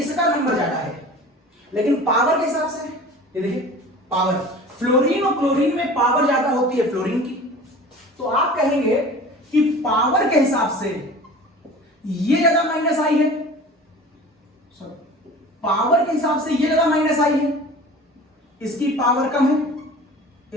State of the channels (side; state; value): both; normal; correlation 0.40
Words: नंबर ज्यादा है, लेकिन पावर के हिसाब से ये देखिए पावर, फ्लोरीन और क्लोरीन में पावर ज्यादा होती है फ्लोरीन की, तो आप कहेंगे कि पावर के हिसाब से ये ज्यादा माइनस आई है, पावर के हिसाब से ये ज्यादा माइनस आई है, इसकी पावर कम है,